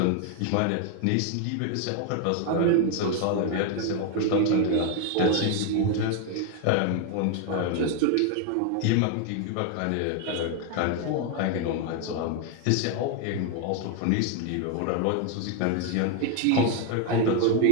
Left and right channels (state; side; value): different; both; correlation 0.01